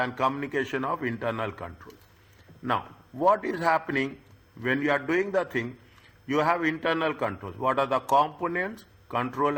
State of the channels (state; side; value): identical; both; correlation 1.00